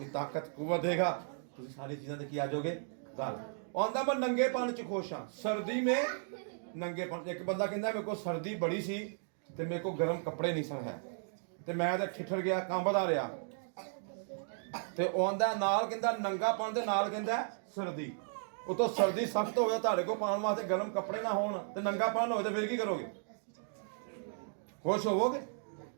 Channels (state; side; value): silent; left; digital silence